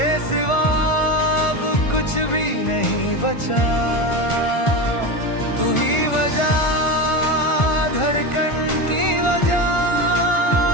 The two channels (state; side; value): late; right; 1.4 ms